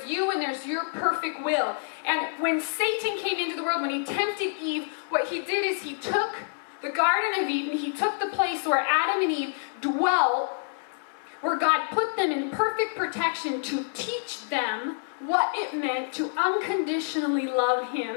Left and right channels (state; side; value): silent; right; digital silence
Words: you and there's your perfect will. And when Satan came into the world, when he tempted Eve, what he did is he took the Garden of Eden, he took the place where Adam and Eve dwelt, where God put them in perfect protection to teach them what it meant to unconditionally love